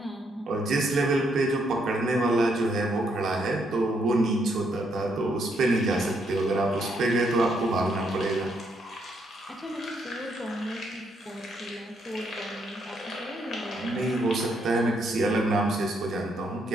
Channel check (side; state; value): both; normal; correlation 0.75